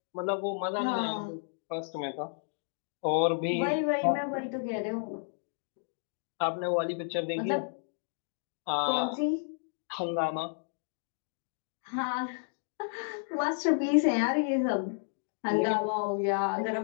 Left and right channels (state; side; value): silent; right; digital silence